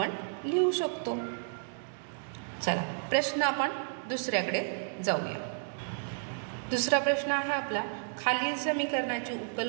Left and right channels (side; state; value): left; silent; digital silence